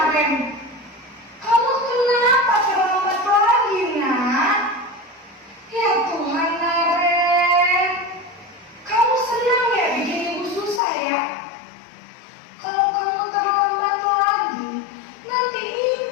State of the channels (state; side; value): drops out; right; at 10.8 s